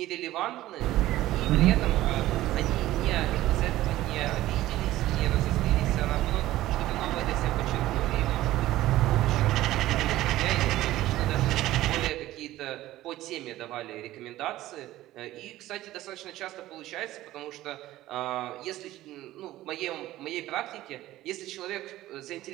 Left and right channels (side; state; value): left; quieter; 15.5 dB